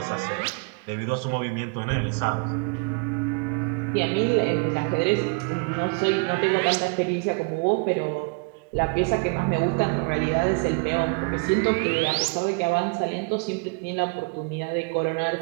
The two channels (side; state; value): left; quieter; 33.7 dB